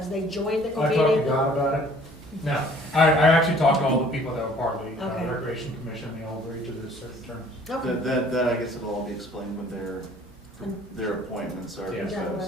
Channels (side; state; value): both; normal; correlation 0.55